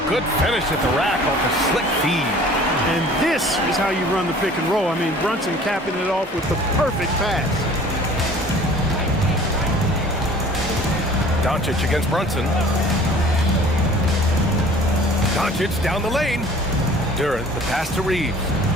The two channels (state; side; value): normal; both; correlation 0.49